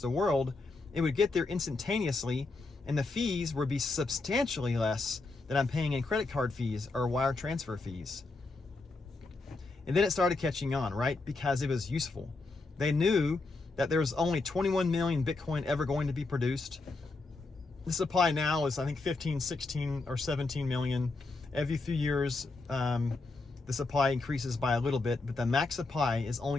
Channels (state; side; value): quieter; right; 3.5 dB